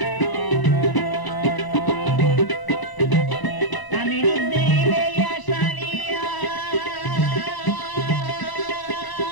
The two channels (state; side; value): late; right; 1.0 ms